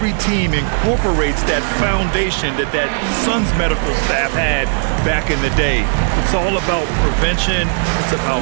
team incorporates that foundation that Suns medical staff had back in the day. It's all about prevention. It's about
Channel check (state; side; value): silent; left; digital silence